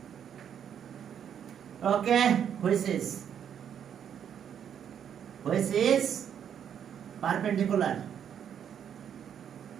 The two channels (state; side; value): quieter; left; 8.7 dB